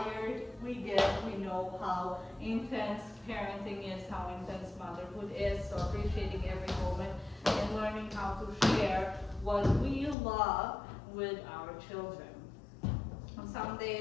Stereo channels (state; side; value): drops out; right; at 10.2 s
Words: we get, we know how intense parenting is, how intense motherhood is, so appreciating every moment and learning how to share what we love with our children. On some